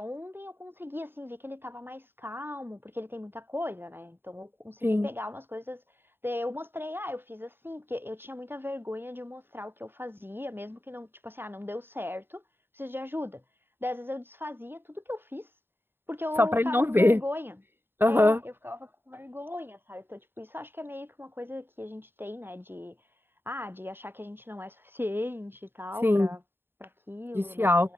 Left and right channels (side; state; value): left; late; 0.11 ms